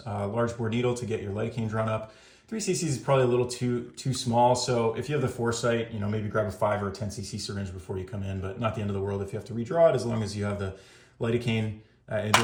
large bore needle to get your lidocaine drawn up. 3 cc's is probably a little too small, so if you have the foresight, maybe grab a 5 or a 10 cc syringe before you come in, but not the end of the world if you have to redraw it, as long as you have the lidocaine. And the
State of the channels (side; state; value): both; identical; correlation 1.00